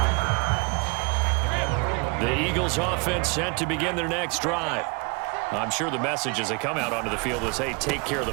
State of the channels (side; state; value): left; quieter; 30.2 dB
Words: The Eagles offense set to begin their next drive. I'm sure the message as they come out onto the field is, hey, take care of the